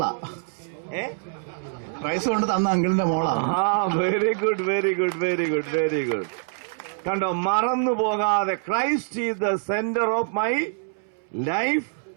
പ്രൈസ് കൊണ്ട് തന്ന അങ്കിളിന്റെ മോളാ. Very good, very good, very good, very good. കണ്ടോ, മറന്നു പോകാതെ Christ is the centre of my life,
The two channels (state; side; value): silent; left; 62 dB below the other